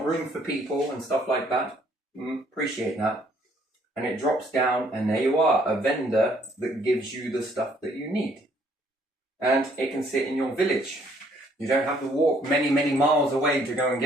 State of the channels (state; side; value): normal; both; correlation 0.64